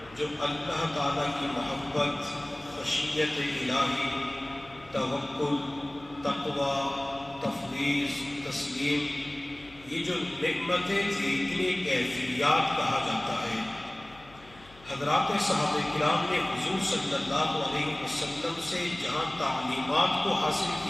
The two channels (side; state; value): left; noise; hum, 24 dB below the sound